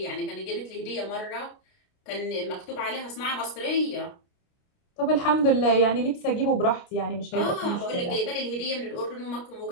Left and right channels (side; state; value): right; late; 29 ms